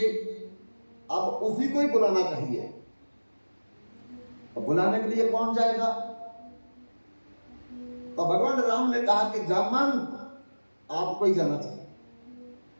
अब उसी को ही बुलाना चाहिए। तो बुलाने के लिए कौन जाएगा? तो भगवान राम ने कहा कि जामंत आपको ही जाना चाहिए।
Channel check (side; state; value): both; inverted; correlation -1.00